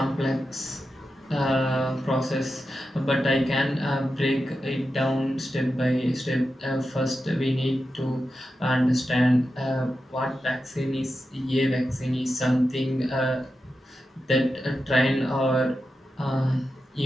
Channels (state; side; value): normal; both; correlation 0.90